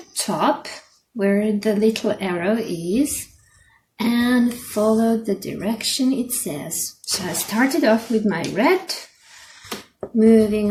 top where the little arrow is and follow the direction it says. So I started off with my red, moving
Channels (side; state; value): both; identical; correlation 1.00